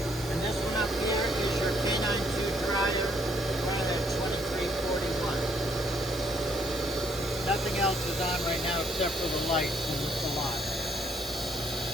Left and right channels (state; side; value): normal; both; correlation 0.68